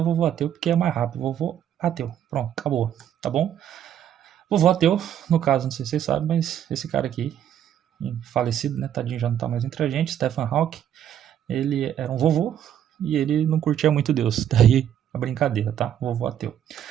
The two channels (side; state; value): left; quieter; 10.1 dB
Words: ateu porque é mais rápido. Vovô ateu. Pronto, acabou, tá bom? Vovô ateu, no caso, não sei se vocês sabem, mas esse cara aqui, falecido, né? Tadinho, já não tá mais entre a gente, Stephen Hawking, ele era um vovô e ele não curtia muito Deus. Daí a brincadeira, tá? Vovô ateu.